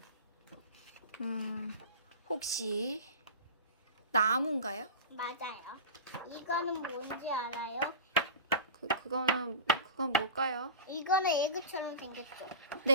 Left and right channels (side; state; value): both; inverted; correlation -0.31